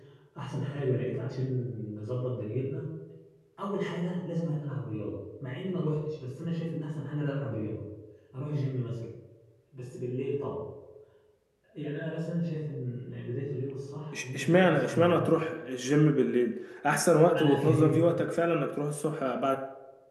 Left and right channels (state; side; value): identical; both; correlation 1.00